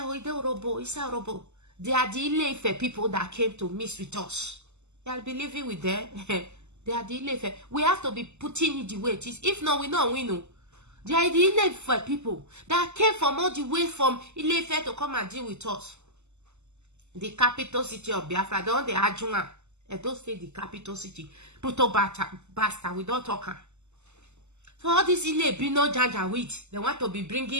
it is Orobo, it's a Orobo. They are the Ile Ife people that came to mix with us. I'll be living with them. They are the Ile Ife. We have to be putting it the way it is. If not, we know. They are the Ile Ife people that came from all the way from Ile Ife to come and deal with us. The capital city of Biafra, the one they Ajunga. I don't say the capital city. Puto basta, we don't talk. So all this Ile Bino Janja with, they want to be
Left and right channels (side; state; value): left; late; 0.83 ms